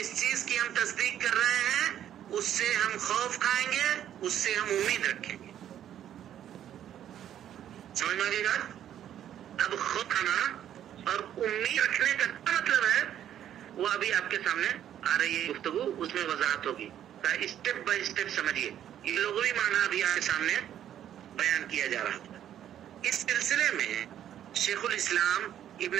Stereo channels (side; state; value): left; quieter; 10.7 dB